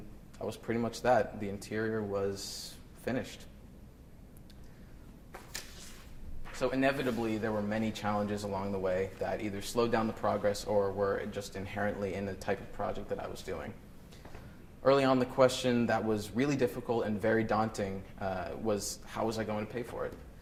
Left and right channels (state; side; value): identical; both; correlation 1.00